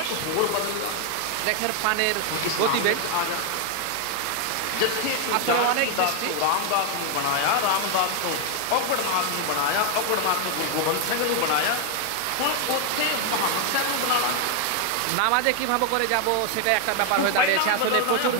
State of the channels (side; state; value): both; different; correlation 0.00